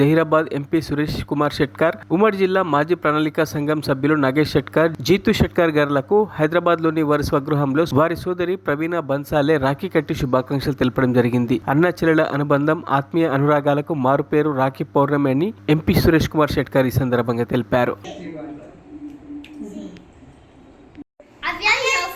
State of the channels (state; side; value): identical; both; correlation 1.00